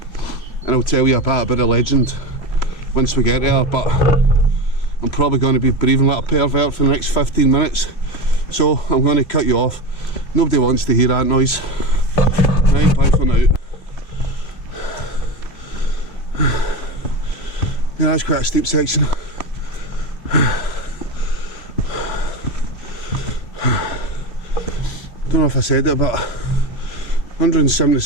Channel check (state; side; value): late; right; 3.0 ms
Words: And I'll tell you a bit about the legend once we get there, but I'm probably going to be breathing like a pervert for the next 15 minutes, so I'm going to cut you off. Nobody wants to hear that noise. Right, bye for now. Yeah, that's quite a steep section. Don't know if I said it, but